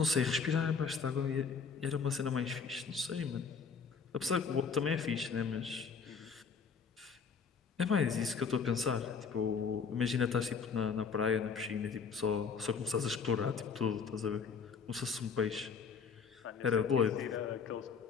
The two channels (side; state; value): right; quieter; 5.7 dB